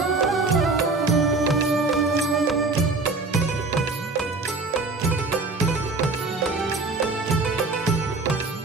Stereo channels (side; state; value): left; quieter; 3.6 dB